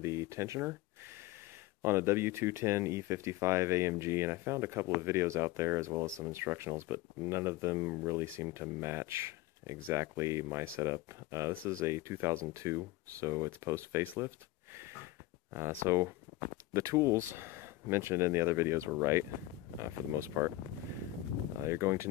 the tensioner on a W210 E55 AMG, and I found a couple of videos out there as well as some instructionals, but none of them really seem to match exactly my setup. This is a 2002, so it's post facelift. So the tools mentioned in the other videos were right, for the most part. You're going to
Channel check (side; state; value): right; quieter; 17.1 dB